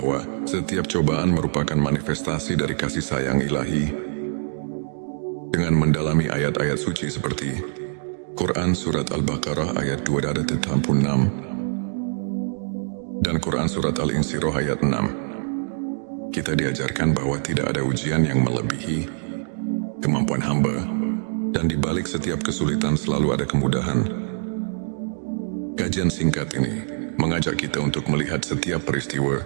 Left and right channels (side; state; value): left; silent; digital silence